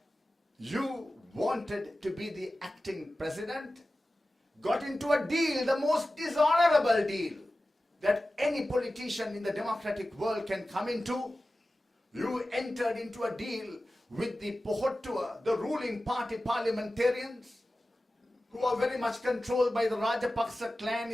wanted to be the acting president, got into a deal, the most dishonorable deal that any politician in the democratic world can come into. You entered into a deal with the Pohottua, the ruling party parliamentarians, who are very much controlled by the Rajapaksa clan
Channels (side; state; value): both; normal; correlation 0.95